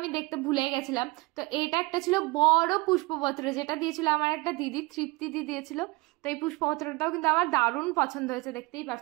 দেখতে ভুলে গেছিলাম। তো এটা একটা ছিল বড় পুষ্পপত্র, যেটা দিয়েছিল আমার একটা দিদি, তৃপ্তি দিদি দিয়েছিল। তো এই পুষ্পপত্রটাও কিন্তু আমার দারুণ পছন্দ হয়েছে, দেখতেই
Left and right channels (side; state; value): left; quieter; 24.5 dB